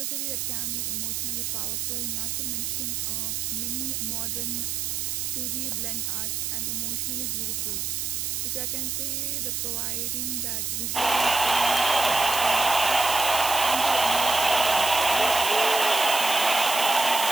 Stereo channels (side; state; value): right; noise; hiss, 2 dB below the sound